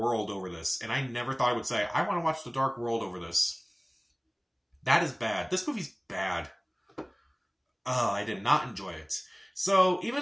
over this. And I never thought I would say, I want to watch The Dark World over this. That is bad. This movie's bad. I did not enjoy it. So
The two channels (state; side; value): identical; both; correlation 1.00